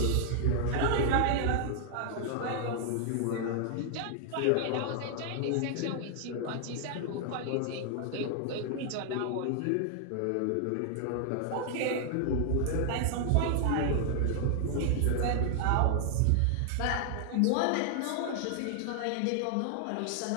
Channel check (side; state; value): both; different; correlation 0.00